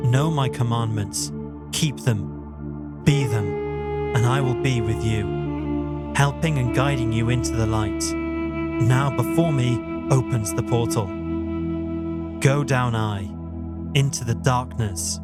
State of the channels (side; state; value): both; identical; correlation 1.00